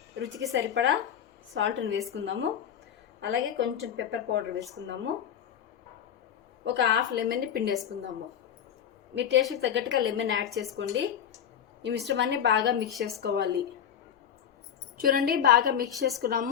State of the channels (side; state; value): right; quieter; 9.1 dB